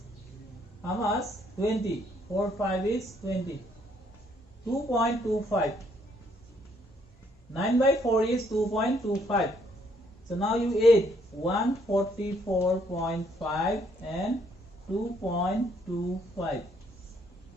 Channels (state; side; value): normal; both; correlation 0.69